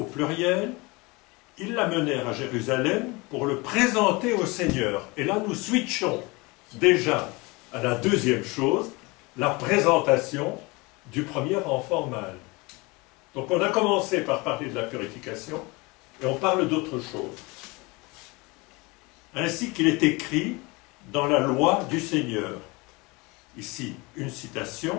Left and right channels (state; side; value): quieter; right; 25.4 dB